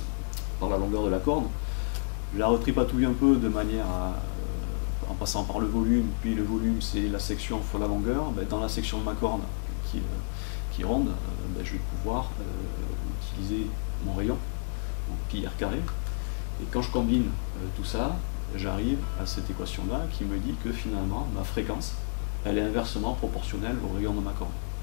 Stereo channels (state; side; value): silent; right; 58 dB below the other